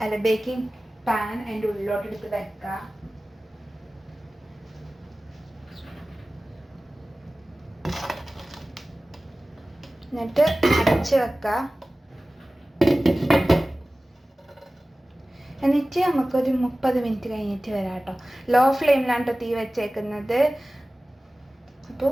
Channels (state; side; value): normal; both; correlation 0.97